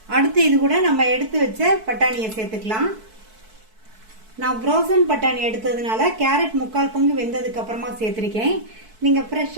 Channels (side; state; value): left; late; 4.6 ms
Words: அடுத்து இது கூட நம்ம எடுத்து வச்ச பட்டாணியை சேர்த்துக்கலாம். நான் ஃப்ரோசன் பட்டாணி எடுத்ததுனால கேரட் 3/4 பங்கு வெந்ததுக்கு அப்புறமா சேர்த்துருக்கேன். நீங்கள்